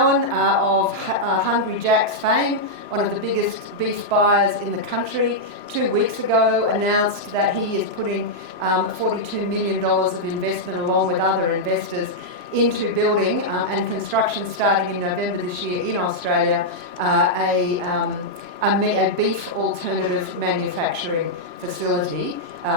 of Hungry Jack's fame, one of the biggest beef buyers in the country, 2 weeks ago announced that he is putting $42 million of investment along with other investors into building and construction starting in November this year in Australia, a beef alternative manufacturing facility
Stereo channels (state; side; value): late; left; 3.0 ms